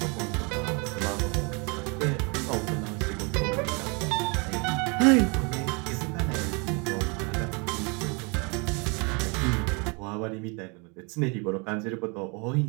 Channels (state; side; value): quieter; left; 31.4 dB